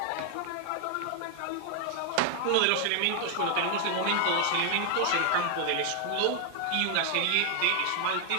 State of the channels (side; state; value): both; different; correlation 0.00